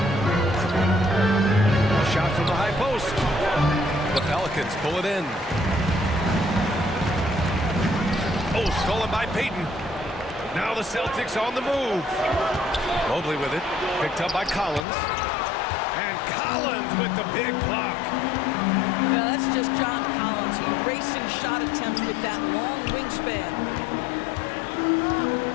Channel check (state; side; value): drops out; right; at 14.9 s